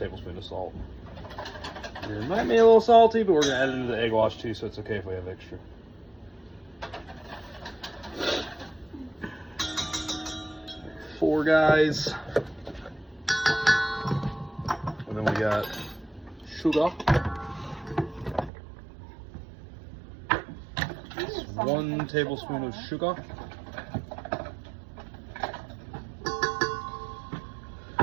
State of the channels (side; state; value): left; drops out; at 18.5 s